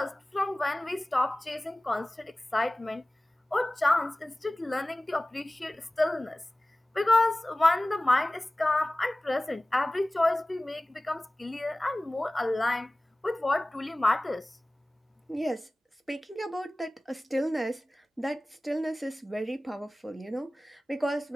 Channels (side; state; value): both; normal; correlation 0.98